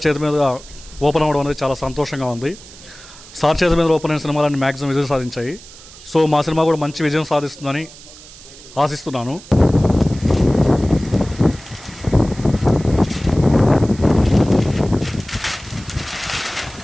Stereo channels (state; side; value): noise; right; hiss, 19 dB below the sound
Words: చేతి మీద ఓపెన్ అవ్వడం అనేది చాలా సంతోషంగా ఉంది. సార్ చేతి మీద ఓపెన్ అయిన సినిమాలన్నీ మ్యాక్సిమం విజయం సాధించాయి. సో మా సినిమా కూడా మంచి విజయం సాధిస్తుందని ఆశిస్తున్నాను.